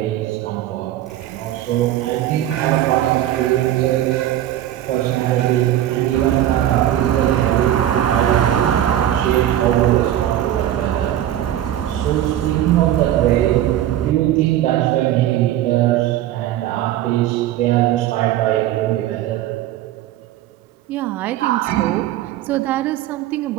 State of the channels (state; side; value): quieter; left; 12.5 dB